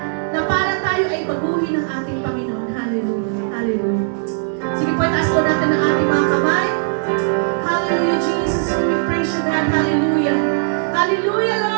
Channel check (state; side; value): silent; left; digital silence